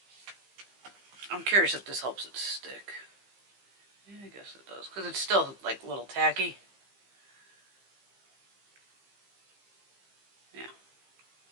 I'm curious if this helps it stick. Yeah, I guess it does, because it's still like a little tacky. Yeah.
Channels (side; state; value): left; late; 15 ms